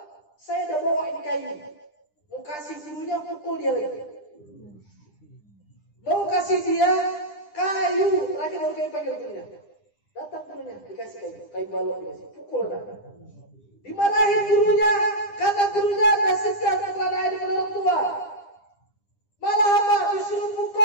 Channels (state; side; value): late; right; 9.9 ms